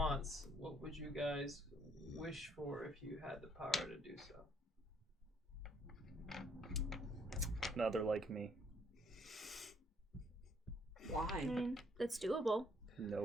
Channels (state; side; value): normal; both; correlation 0.66